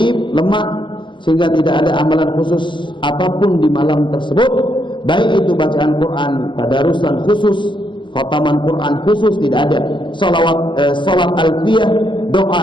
lemah, sehingga tidak ada amalan khusus apapun di malam tersebut, baik itu bacaan Quran, tadarusan khusus, khataman Quran khusus, tidak ada. Salat alfiyah,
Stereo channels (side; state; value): right; late; 0.23 ms